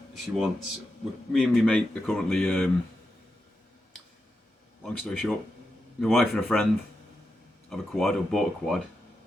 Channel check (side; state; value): both; normal; correlation 0.87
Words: She wants, me and my mate are currently, long story short, my wife and a friend have a quad, or bought a quad,